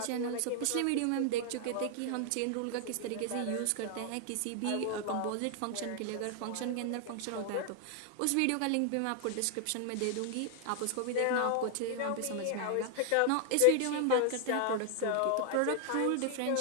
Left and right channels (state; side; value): different; both; correlation 0.00